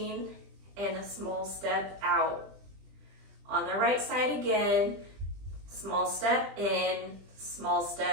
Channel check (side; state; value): left; late; 20 ms